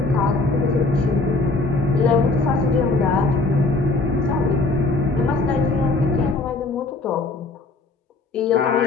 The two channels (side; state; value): right; quieter; 3.3 dB